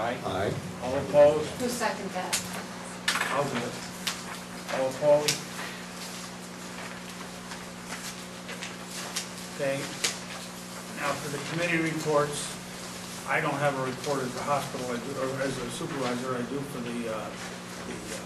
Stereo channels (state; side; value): identical; both; correlation 1.00